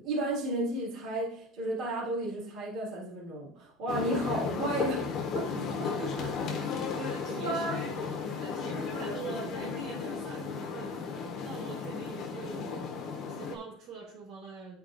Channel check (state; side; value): normal; both; correlation 0.34